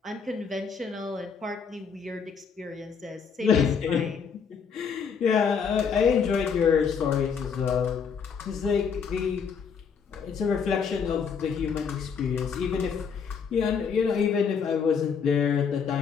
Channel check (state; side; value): quieter; right; 6.3 dB